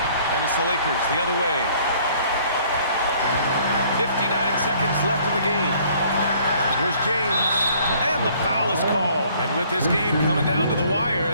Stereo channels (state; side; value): inverted; both; correlation -0.59